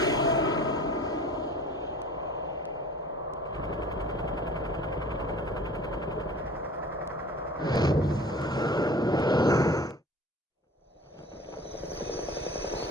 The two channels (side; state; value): both; normal; correlation 0.45